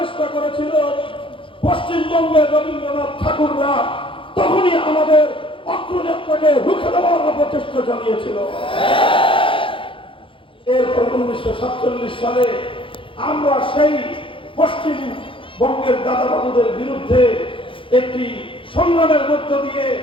করেছিল, পশ্চিমবঙ্গের রবীন্দ্রনাথ ঠাকুররা তখনই আমাদের অগ্রযাত্রাকে রুখে দেওয়ার প্রচেষ্টা চালিয়েছিল। এরপর 1947 সালে আমরা সেই পশ্চিমবঙ্গের দাদাবাবুদের বিরুদ্ধে একটি সংগ্রামের মধ্য দিয়ে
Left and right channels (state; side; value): late; right; 0.25 ms